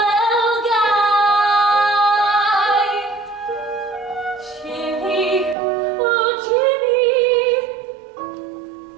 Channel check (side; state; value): left; drops out; at 5.6 s